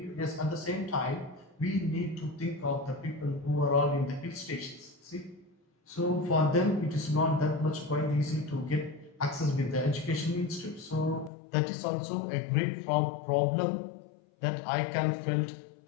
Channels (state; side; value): drops out; right; at 11.3 s